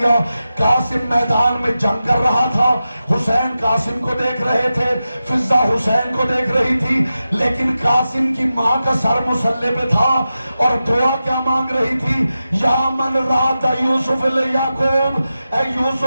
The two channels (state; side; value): inverted; both; correlation -0.92